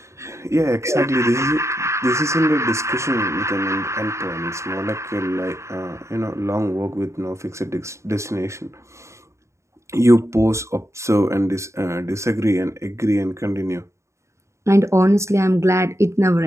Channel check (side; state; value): left; late; 0.14 ms